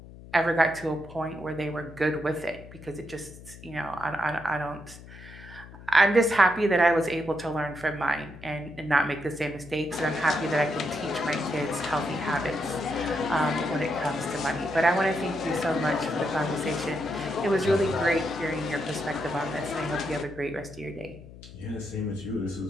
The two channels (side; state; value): left; noise; hum, 17 dB below the sound